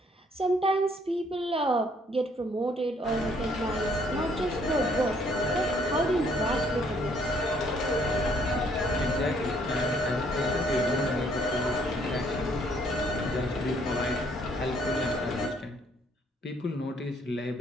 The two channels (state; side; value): normal; both; correlation 0.65